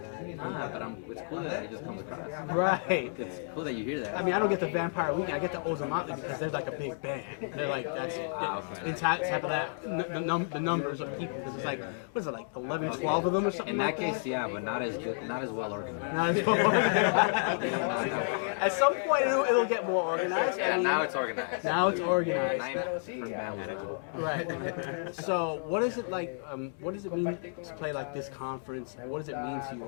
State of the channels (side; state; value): right; silent; digital silence